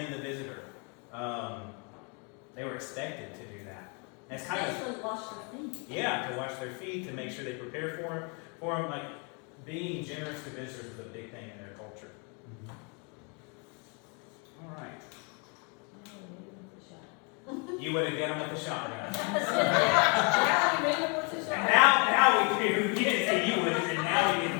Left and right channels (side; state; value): right; quieter; 34.7 dB